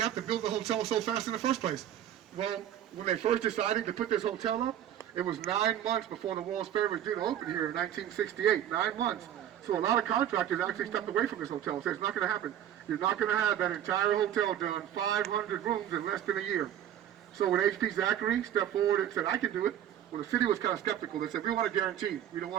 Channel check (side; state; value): left; quieter; 10.7 dB